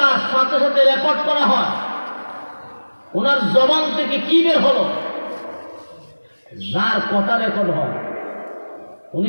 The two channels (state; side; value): inverted; both; correlation -1.00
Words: সাথে সাথে রেকর্ড করা হয়। ওনার জবান থেকে কি বের হলো, যার কথা রেকর্ড হয়,